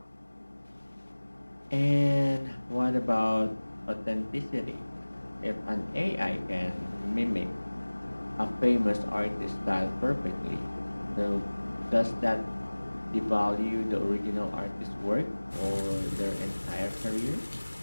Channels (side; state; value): both; inverted; correlation -1.00